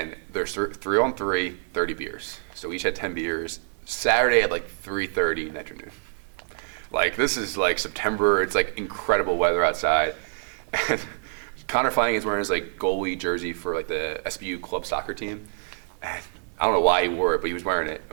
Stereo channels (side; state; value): left; silent; digital silence